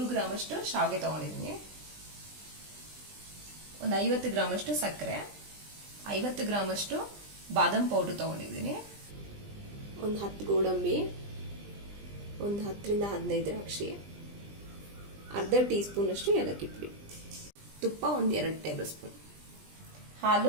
ಗ್ರಾಮ್ ಅಷ್ಟು ಶಾವಿಗೆ ತಗೊಂಡಿದ್ದೀನಿ, ಒಂದು 50 ಗ್ರಾಮ್ ಅಷ್ಟು ಸಕ್ಕರೆ, 50 ಗ್ರಾಮ್ ಅಷ್ಟು ಬಾದಾಮ್ ಪೌಡರ್ ತಗೊಂಡಿದ್ದೀನಿ, ಒಂದು 10 ಗೋಡಂಬಿ, ಒಂದು 10 ರಿಂದ 15 ದ್ರಾಕ್ಷಿ, ಅರ್ಧ ಟೀ ಸ್ಪೂನ್ ಅಷ್ಟು ಏಲಕ್ಕಿ ಪುಡಿ, ತುಪ್ಪ ಒಂದು 2 ಟೇಬಲ್ ಸ್ಪೂನ್,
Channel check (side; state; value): left; late; 20 ms